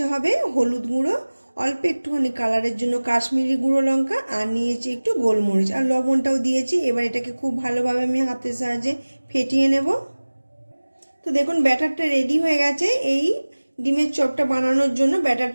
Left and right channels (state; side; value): inverted; both; correlation -1.00